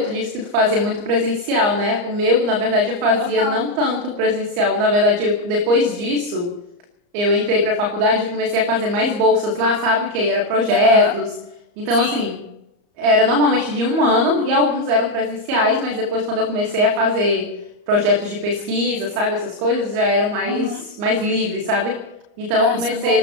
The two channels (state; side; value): late; left; 34 ms